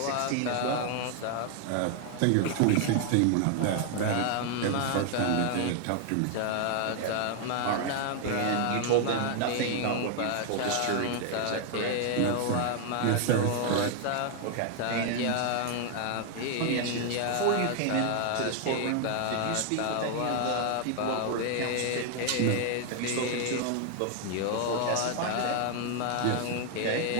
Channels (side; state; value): both; different; correlation 0.00